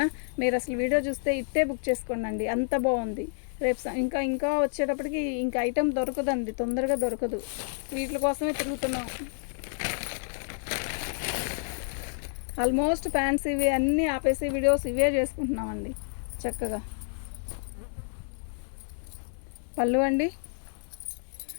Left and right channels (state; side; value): silent; right; digital silence